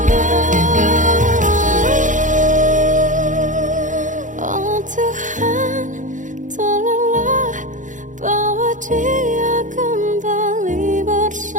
Oh Tuhan, tolonglah bawa dia kembali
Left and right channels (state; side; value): late; left; 0.37 ms